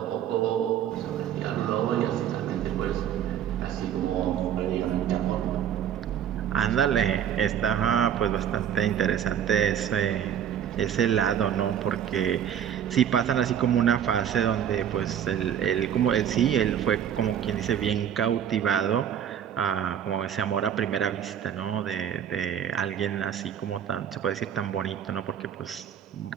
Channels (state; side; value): quieter; left; 9.4 dB